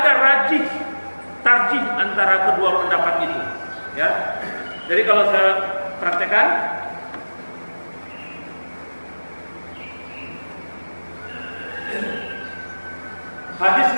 tarjih antara kedua pendapat itu. Ya. Jadi kalau saya praktekkan, hadis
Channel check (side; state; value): both; inverted; correlation -1.00